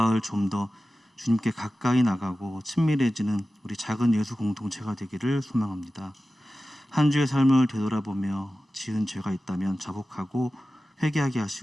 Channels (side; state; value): both; normal; correlation 0.95